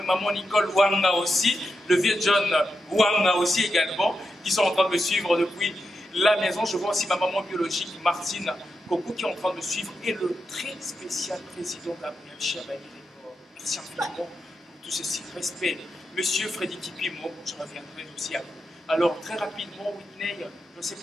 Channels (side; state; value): both; normal; correlation 0.87